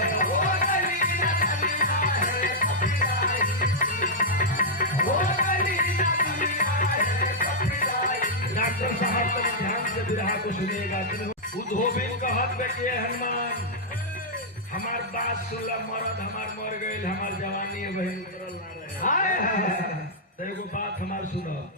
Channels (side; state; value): both; normal; correlation -0.08